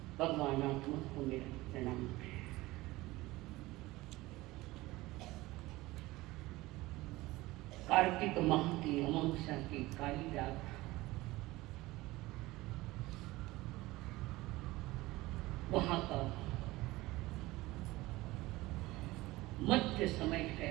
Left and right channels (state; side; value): quieter; left; 19.4 dB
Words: भगवान आत्मा को मेरा प्रणाम। कार्तिक माह की अमावस्या की काली रात, वहां का मध्य समय